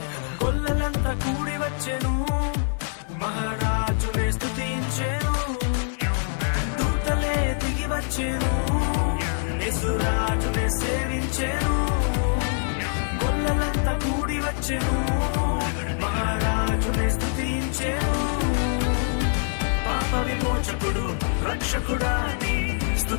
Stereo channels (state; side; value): silent; right; 60 dB below the other